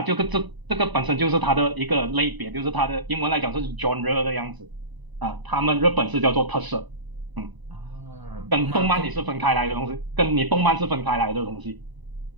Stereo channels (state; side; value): late; left; 1.0 ms